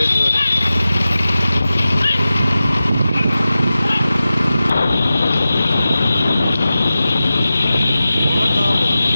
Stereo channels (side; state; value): both; inverted; correlation -0.94